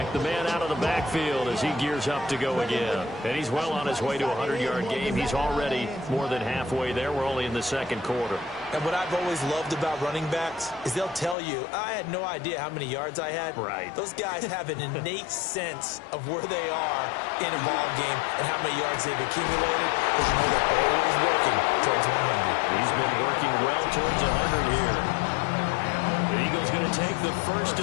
the man out of the backfield as he gears up to go again. And he's well on his way to a 100-yard game. He's already more than halfway there. We're only in the 2nd quarter. And what I've always loved about running backs is they'll tell you, I had no idea how many yards I had. Right. Those guys have an innate sense of where they are in a ball game and how many yards they've accumulated, because you know they're always working towards 100. He's been working well towards 100 here. The Eagles going to take the first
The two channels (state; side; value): drops out; right; at 11.4 s